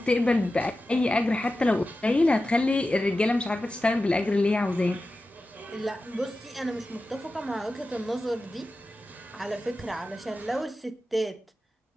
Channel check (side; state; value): both; normal; correlation 0.93